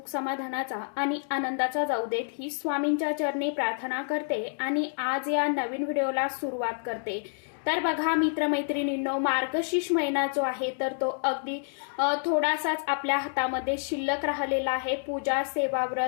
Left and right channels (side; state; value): right; silent; digital silence